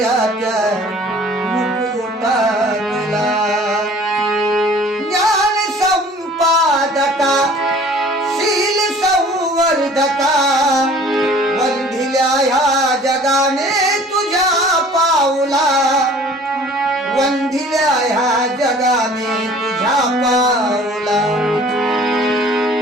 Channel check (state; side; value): normal; both; correlation 0.50